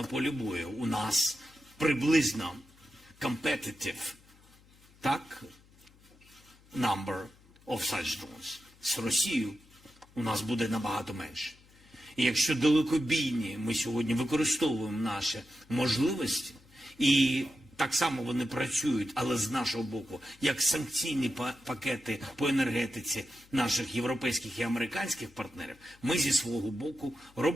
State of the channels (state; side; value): noise; left; hum, 27 dB below the sound